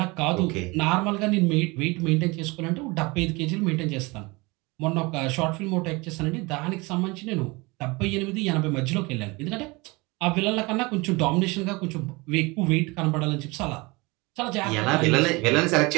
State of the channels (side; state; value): left; quieter; 25.0 dB